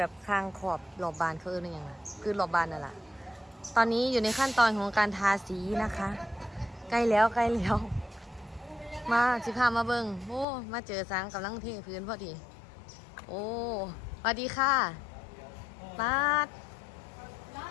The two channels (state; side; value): drops out; right; at 10.5 s